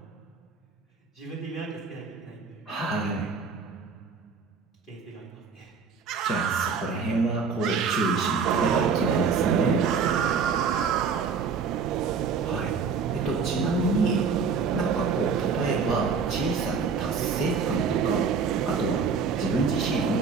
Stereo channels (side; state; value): left; quieter; 5.5 dB